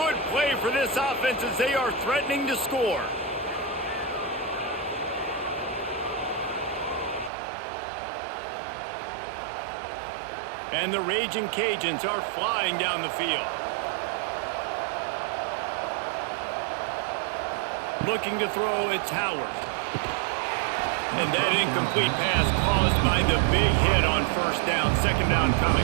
play for this offense as they are threatening to score. And the Raging Cajuns are flying down the field. Looking to throw, it's Howard. And that incomplete pass caused by the big hit on first down. 2nd down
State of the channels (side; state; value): left; drops out; at 7.3 s